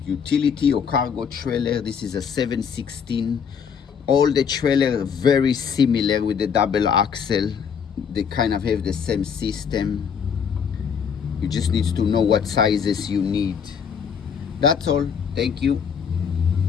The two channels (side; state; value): right; quieter; 7.0 dB